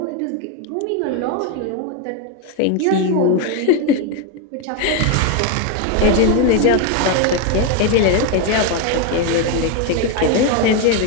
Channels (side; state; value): both; different; correlation 0.02